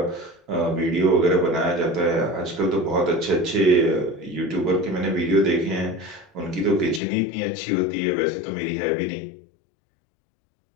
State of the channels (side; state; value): right; drops out; at 7.0 s